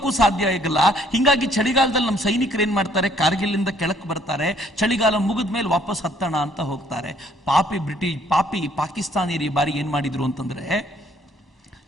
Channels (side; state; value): both; normal; correlation 0.63